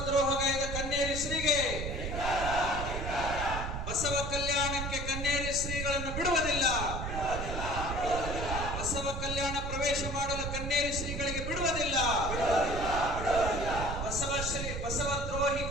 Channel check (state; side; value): noise; right; rumble, 4 dB below the sound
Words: ದ್ರೋಹಗೈದ ಕನ್ನೇರಿ ಶ್ರೀಗೆ, ಬಸವ ಕಲ್ಯಾಣಕ್ಕೆ ಕನ್ನೇರಿ ಶ್ರೀಗಳನ್ನು ಬಿಡುವುದಿಲ್ಲ. ಬಸವ ಕಲ್ಯಾಣ ಪ್ರವೇಶ ಮಾಡಲು ಕನ್ನೇರಿ ಶ್ರೀಗಳಿಗೆ ಬಿಡುವುದಿಲ್ಲ. ಬಸವ ದ್ರೋಹಿ